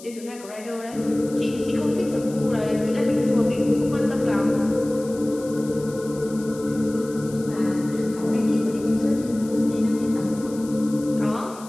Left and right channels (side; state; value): left; noise; hiss, 19 dB below the sound